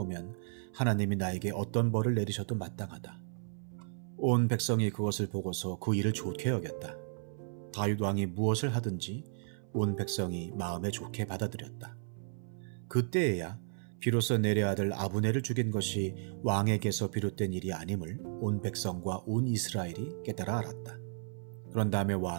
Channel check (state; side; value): silent; left; 55 dB below the other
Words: 하나님이 나에게 어떤 벌을 내리셔도 마땅하다. 온 백성이 그것을 보고서 그 일을 좋게 여겼다. 다윗 왕이 무엇을 하든지 온 백성이 마음에 좋게 받아들였다. 그때에야 비로소 넬의 아들 아브넬을 죽인 것이 왕에게서 비롯된 일이 아님을 온 백성과 온 이스라엘이 깨달아 알았다. 그런 다음에